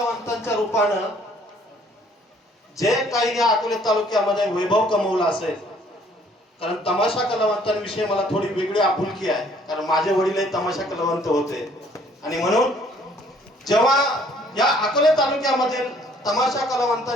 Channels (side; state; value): both; normal; correlation 0.60